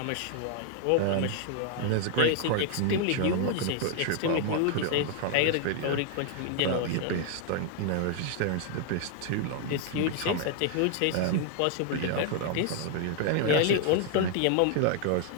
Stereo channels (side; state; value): both; different; correlation 0.00